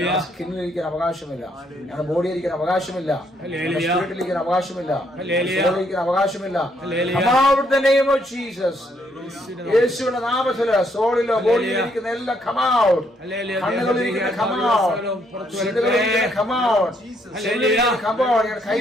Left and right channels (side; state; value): both; normal; correlation 0.72